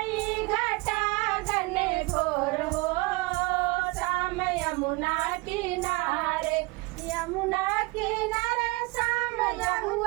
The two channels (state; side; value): quieter; left; 24.1 dB